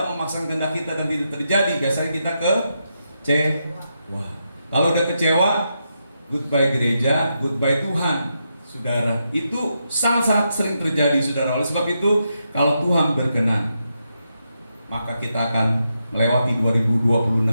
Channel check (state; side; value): inverted; both; correlation -0.84